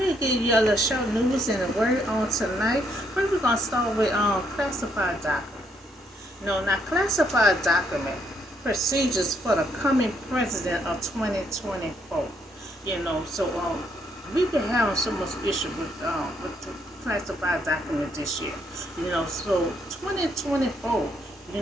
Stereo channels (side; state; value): both; normal; correlation 0.72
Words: to give you a little short news and a word on tonight. First, we're gonna start with classified document. Now classified document procedures for the coming president of 2024. We've been having so much issue with the classified document this year. So 2024.